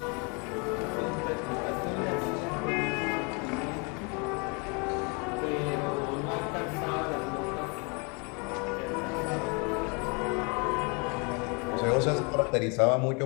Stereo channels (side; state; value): right; quieter; 32.6 dB